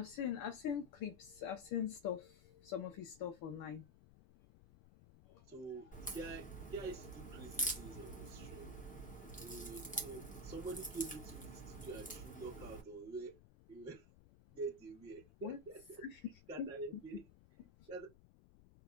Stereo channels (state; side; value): noise; left; rumble, 21 dB below the sound